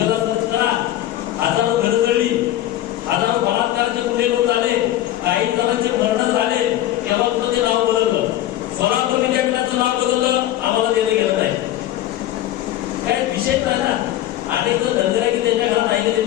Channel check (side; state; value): right; quieter; 13.6 dB